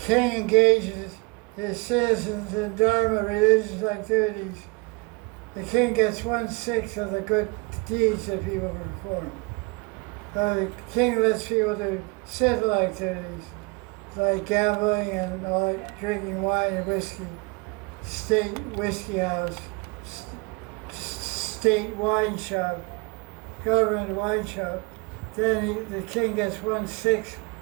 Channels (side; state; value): left; quieter; 28.6 dB